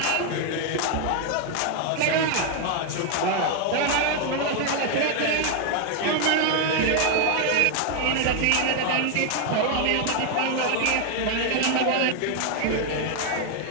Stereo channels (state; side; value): different; both; correlation 0.01